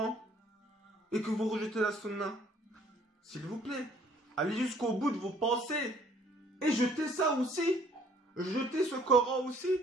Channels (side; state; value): both; normal; correlation 0.59